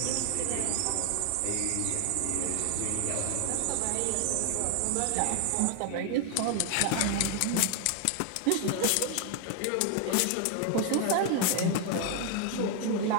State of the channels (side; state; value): both; different; correlation 0.00